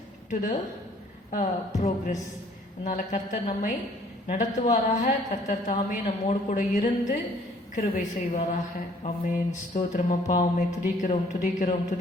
to the progress. அதனால கர்த்தர் நம்மை நடத்துவாராக. கர்த்தர் தாமே நம்மோடு கூட இருந்து கிருபை செய்வாராக. ஆமென். ஸ்தோத்திரம் அப்பா, உம்மை துதிக்கிறோம் துதிக்கிறோம்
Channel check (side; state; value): both; normal; correlation 0.59